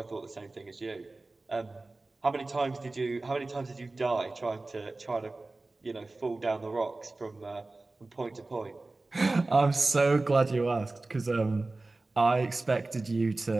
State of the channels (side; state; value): left; quieter; 3.2 dB